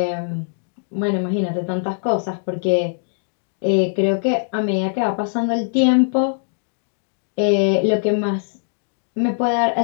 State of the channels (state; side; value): silent; right; digital silence